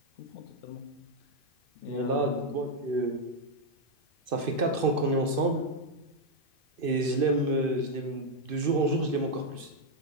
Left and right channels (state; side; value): late; left; 2.5 ms